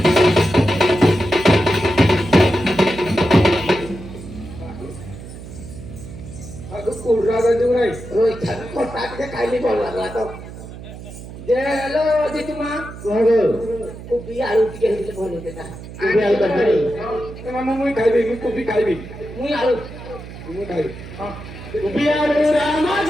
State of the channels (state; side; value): noise; right; hum, 13 dB below the sound